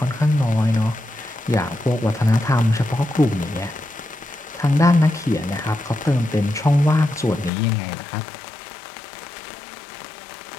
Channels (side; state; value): right; drops out; at 7.5 s